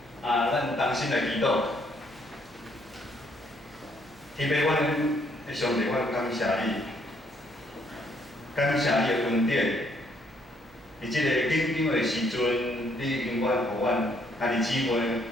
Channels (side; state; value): right; noise; hum, 25 dB below the sound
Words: 咱同心来祈祷。天父，阮的上帝，阮感谢你，感谢你的恩典。伫即个紧张的时阵，你永远互阮兄弟姊妹